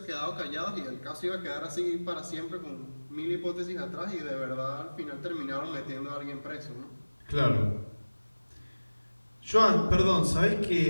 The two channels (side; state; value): both; inverted; correlation -1.00